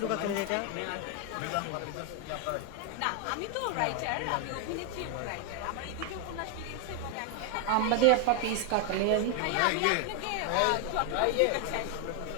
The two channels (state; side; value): different; both; correlation 0.01